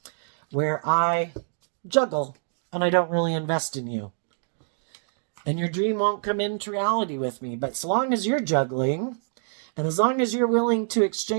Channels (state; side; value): silent; left; digital silence